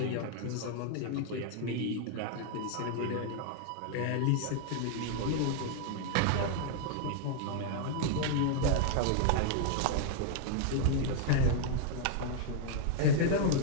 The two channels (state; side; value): different; both; correlation 0.00